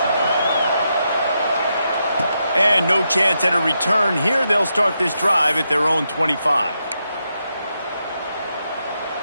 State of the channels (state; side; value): inverted; both; correlation -0.83